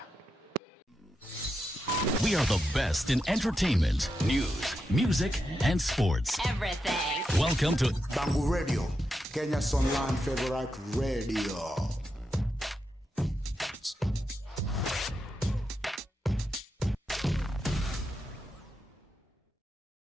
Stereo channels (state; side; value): normal; both; correlation 0.86